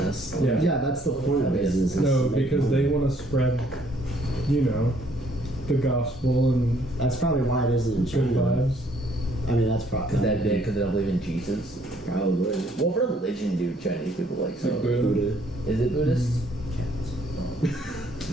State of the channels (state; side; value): normal; both; correlation 0.65